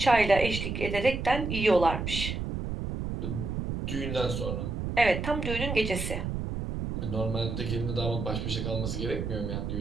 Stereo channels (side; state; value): right; noise; rumble, 4 dB below the sound